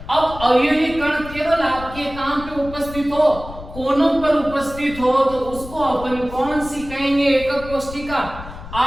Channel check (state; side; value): noise; left; rumble, 14 dB below the sound